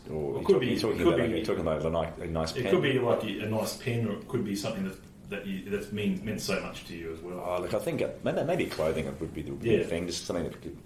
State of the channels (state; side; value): identical; both; correlation 1.00